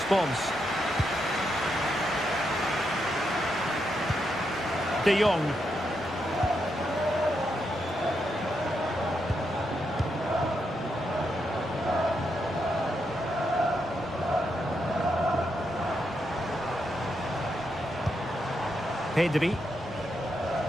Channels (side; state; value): both; normal; correlation 0.82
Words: De Jong. Pedri.